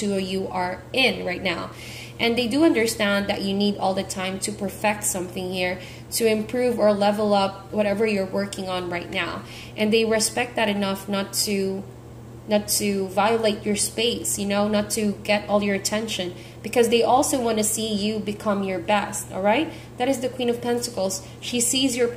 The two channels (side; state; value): both; identical; correlation 1.00